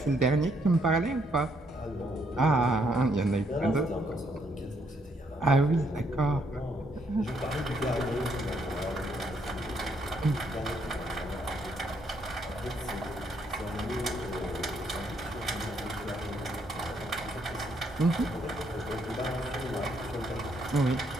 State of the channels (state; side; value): normal; both; correlation 0.72